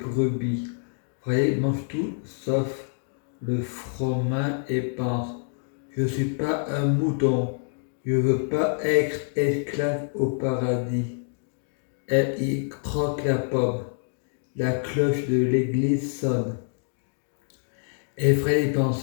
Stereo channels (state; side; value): silent; right; 60 dB below the other